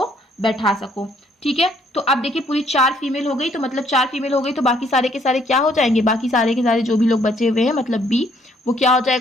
बैठा सको। ठीक है, तो अब देखिए पूरी 4 फीमेल हो गई, तो मतलब 4 फीमेल हो गई तो बाकी सारे के सारे क्या हो जाएंगे, बाकी सारे के सारे जो भी लोग बचे हुए हैं मतलब बी, वो क्या हो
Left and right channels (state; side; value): normal; both; correlation 0.66